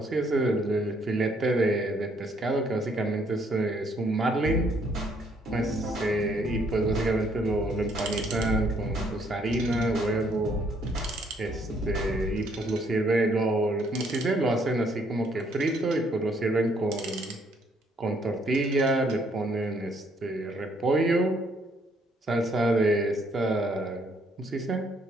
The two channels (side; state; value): both; normal; correlation 0.67